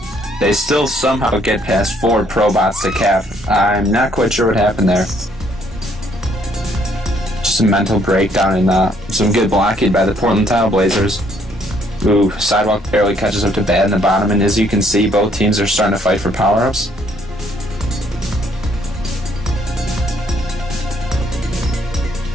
They still somehow get past 4 ProBots to cap. I'm not quite sure what happened there. Just a mental breakdown and some good blocking by the Portland Tile Blazers. Ooh, Sidewalk barely catches up to Bad in the bottom, and as you can see, both teams are starting to fight for power-ups.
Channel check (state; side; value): normal; both; correlation 0.67